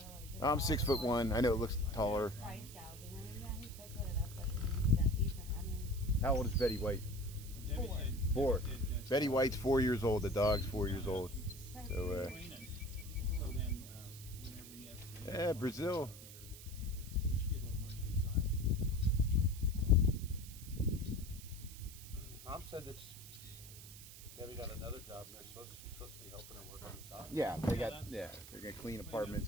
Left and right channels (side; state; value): right; noise; hiss, 15 dB below the sound